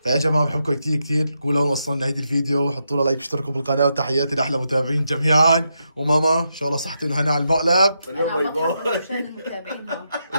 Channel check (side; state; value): both; inverted; correlation -0.83